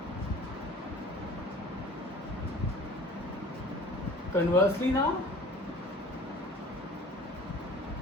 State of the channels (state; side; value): normal; both; correlation 0.46